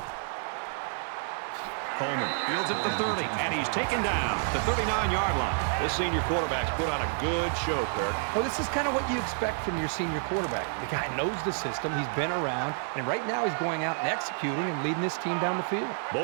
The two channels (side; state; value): left; silent; 58 dB below the other